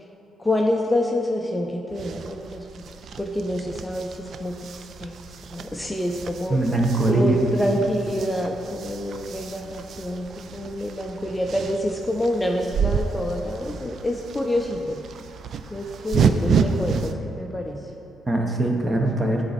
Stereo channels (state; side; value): normal; both; correlation 0.80